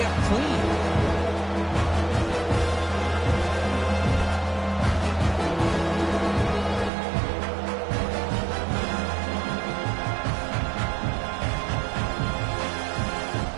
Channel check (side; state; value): left; drops out; at 6.9 s